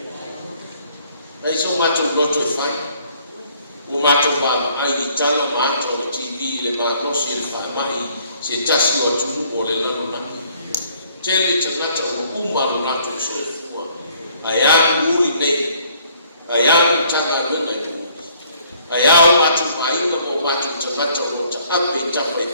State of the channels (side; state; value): both; inverted; correlation -0.62